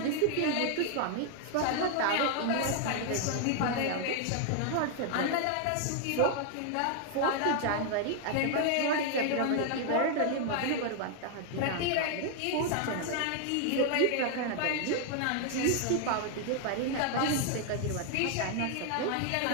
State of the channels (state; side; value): different; both; correlation 0.00